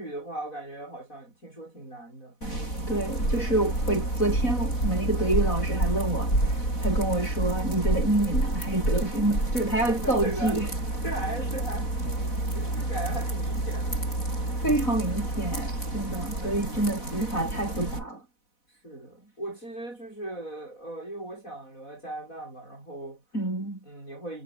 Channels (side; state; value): right; late; 4.1 ms